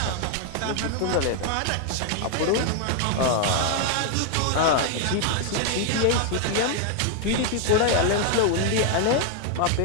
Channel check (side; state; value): both; different; correlation 0.00